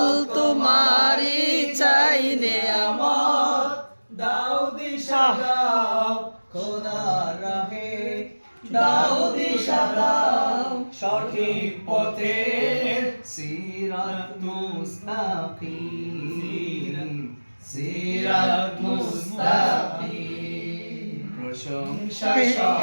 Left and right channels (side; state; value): both; inverted; correlation -1.00